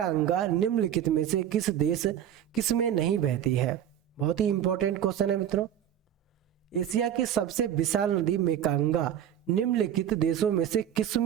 निम्नलिखित में से किस में नहीं बहती है? बहुत ही इंपॉर्टेंट क्वेश्चन है मित्रों, एशिया की सबसे विशाल नदी मेकांगा निम्नलिखित देशों में से किस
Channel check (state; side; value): quieter; left; 10.2 dB